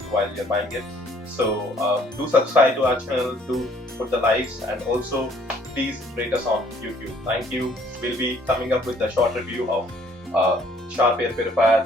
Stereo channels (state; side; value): normal; both; correlation 0.61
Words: while you're buying it. So do subscribe to our channel, do put the likes, and also please rate us on YouTube. Thank you. We'll be coming up with a short review of Sharp air